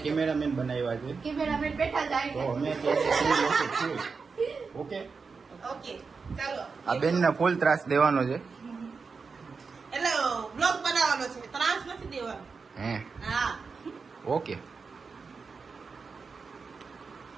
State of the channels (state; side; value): quieter; left; 4.9 dB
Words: कैमरामैन बनाया है, कैमरामैन बैठा जाए तो हमें कैसे ओके ओके ચાલો. આ બેન ને ફૂલ ત્રાસ દેવાનો છે, એટલે બ્લોગ બનાવવાનો છે, ત્રાસ નથી દેવાનો. હે હા ઓકે.